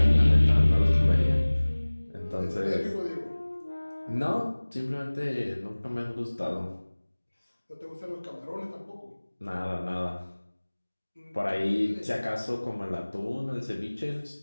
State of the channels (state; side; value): inverted; both; correlation -1.00